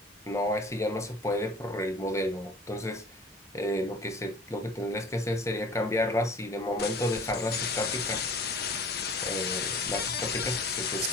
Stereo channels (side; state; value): both; normal; correlation 0.45